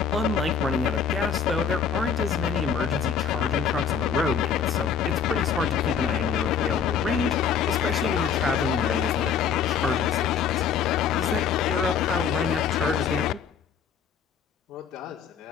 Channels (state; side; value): quieter; right; 6.9 dB